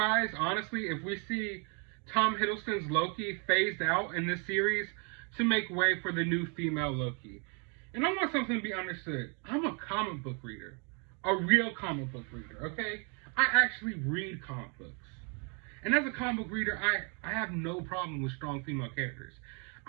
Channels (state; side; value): quieter; left; 36.6 dB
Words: honestly, if we see Tom Hiddleston's Loki phased out in this series to make way for the new female Loki. And I want something to be understood. I'm a comic book reader. A real comic book reader, okay? I actually read comic books. And as a comic book reader, I have no problem with strong female characters.